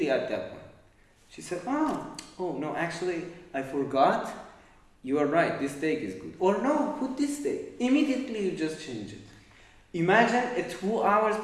at that point, she said, oh no, actually, I forgot. You are right. This take is good. Or no, put this take. Immediately, you just change it. Imagine a 2 hours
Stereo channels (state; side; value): identical; both; correlation 1.00